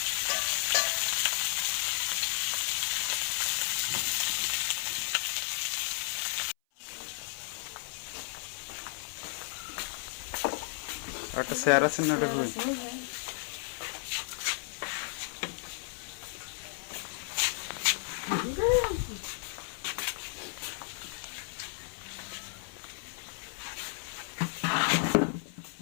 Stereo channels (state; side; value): silent; right; 55 dB below the other